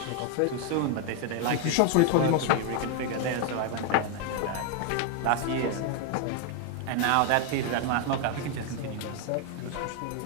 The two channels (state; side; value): different; both; correlation 0.01